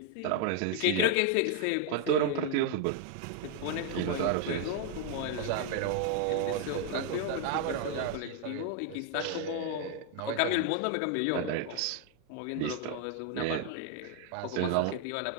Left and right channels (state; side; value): different; both; correlation 0.00